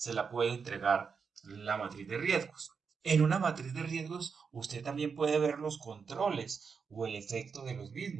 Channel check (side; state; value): left; quieter; 5.8 dB